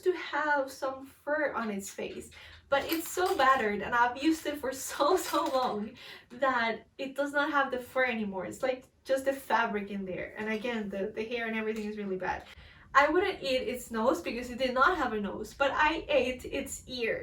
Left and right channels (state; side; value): identical; both; correlation 1.00